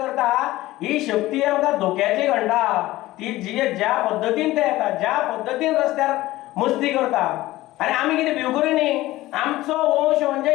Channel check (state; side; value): quieter; right; 17.2 dB